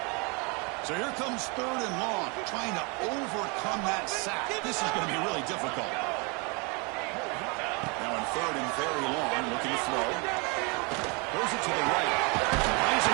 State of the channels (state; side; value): quieter; left; 31.2 dB